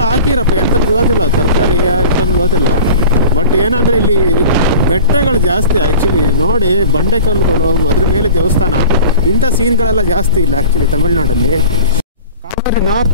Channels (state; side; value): inverted; both; correlation -0.40